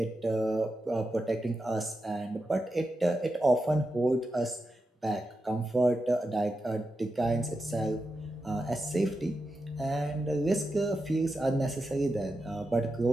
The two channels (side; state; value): both; normal; correlation 0.89